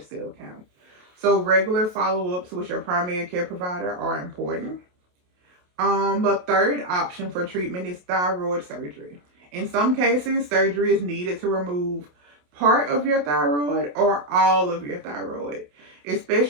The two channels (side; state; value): left; late; 28 ms